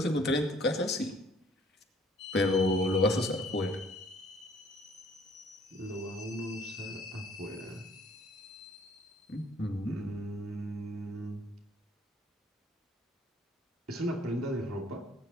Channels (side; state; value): both; normal; correlation 0.59